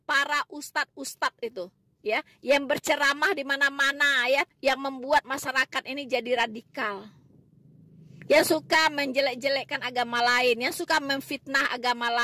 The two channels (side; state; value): both; identical; correlation 1.00